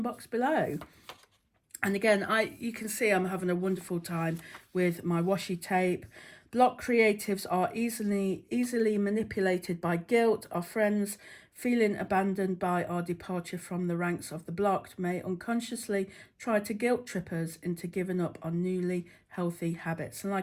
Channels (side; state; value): both; identical; correlation 1.00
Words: box below. And again, you can see I'm having a wonderful time with my washi tape. Block creatives are easily manipulated by guilt. Our friends, feeling abandoned by our departure from the ranks of the blocked, may unconsciously try to guilt trip us into giving up on newly healthy habits. And